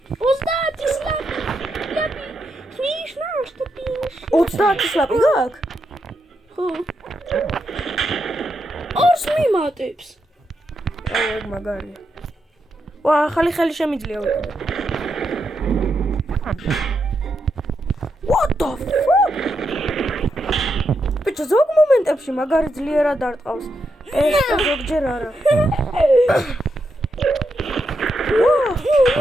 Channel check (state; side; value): normal; both; correlation 0.83